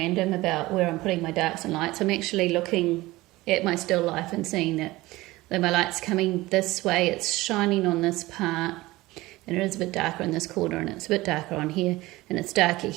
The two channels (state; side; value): quieter; left; 19.2 dB